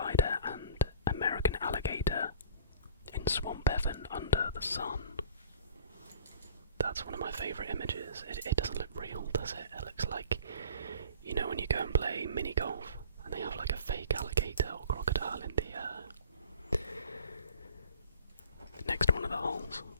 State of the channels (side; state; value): both; inverted; correlation -0.47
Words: and American alligator in Swamp Heaven under the sun. That's one of my favourite images. It doesn't look real, does it? It looks like, you know, when you go and play mini golf and they have like a fake alligator or crocodile in the next to one of the holes.